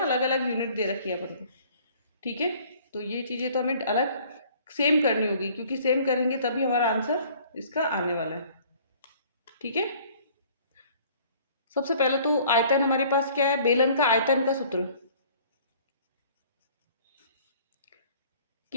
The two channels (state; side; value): inverted; both; correlation -0.54